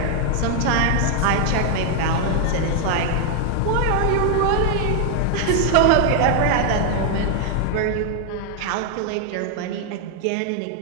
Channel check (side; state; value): both; different; correlation 0.00